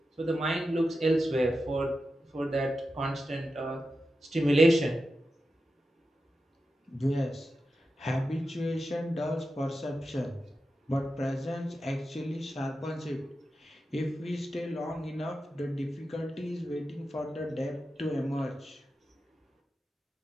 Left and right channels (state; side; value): normal; both; correlation 0.90